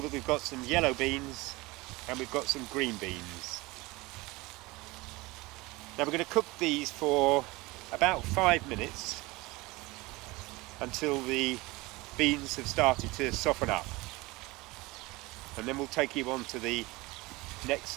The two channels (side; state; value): left; quieter; 22.2 dB